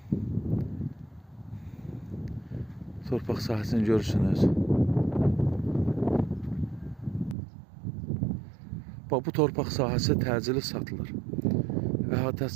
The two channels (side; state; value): left; drops out; at 7.4 s